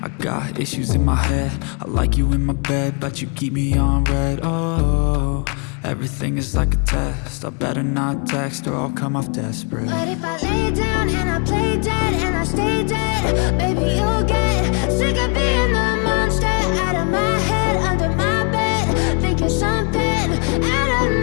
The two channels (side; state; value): right; quieter; 36.3 dB